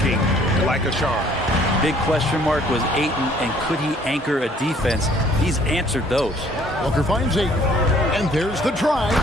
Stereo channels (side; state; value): both; normal; correlation 0.59